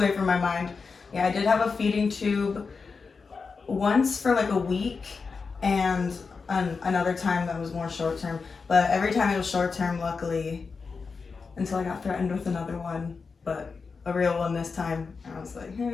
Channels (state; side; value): quieter; right; 4.9 dB